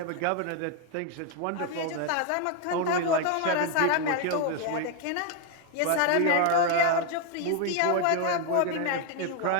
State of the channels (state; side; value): different; both; correlation 0.00